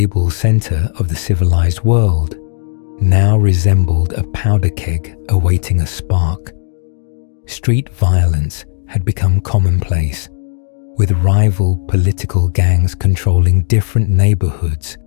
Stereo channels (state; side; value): silent; right; digital silence